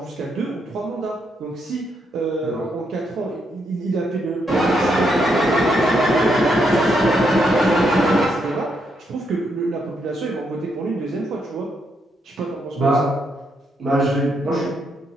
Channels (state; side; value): normal; both; correlation 0.78